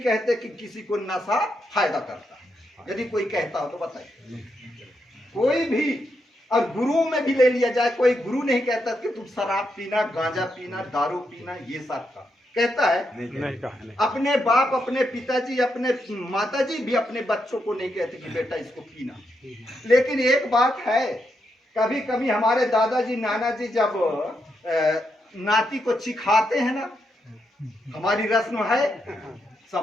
कि किसी को नशा फायदा करता है। यदि कोई कहता हो तो बताइए, कोई भी। और गुरुओं में भी ले लिया जाए, कोई गुरु नहीं कहता कि तुम शराब पीना, गांजा पीना, दारू पीना, ये सब का कहता है नहीं कहा। अपने बाप, अपने पिताजी, अपने माताजी भी अपने बच्चों को नहीं कहते कि बेटा इसको पीना। लेकिन एक बात है, कभी कभी हमारे दादाजी नाना जी जब नाती को चिखाते हैं ना, हमारी रस्म है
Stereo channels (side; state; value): both; normal; correlation 0.82